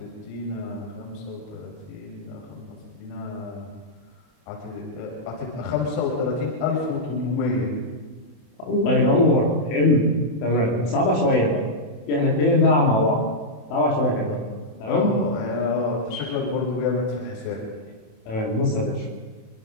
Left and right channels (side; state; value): right; late; 28 ms